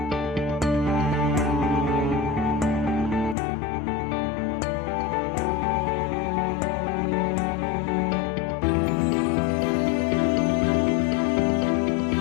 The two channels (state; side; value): drops out; right; at 3.4 s